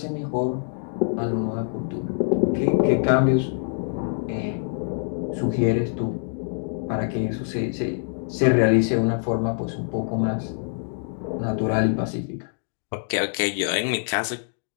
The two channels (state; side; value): silent; right; digital silence